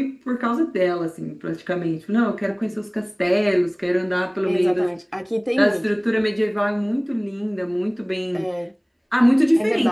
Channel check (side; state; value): both; identical; correlation 1.00